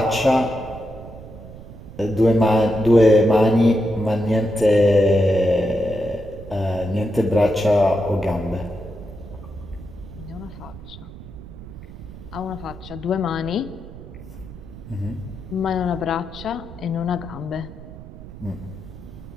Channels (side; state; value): right; noise; rumble, 15 dB below the sound